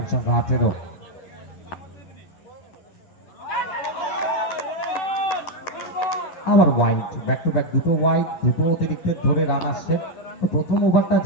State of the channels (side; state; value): right; late; 11 ms